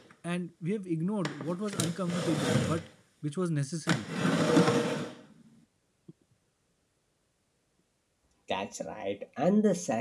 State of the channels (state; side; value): identical; both; correlation 1.00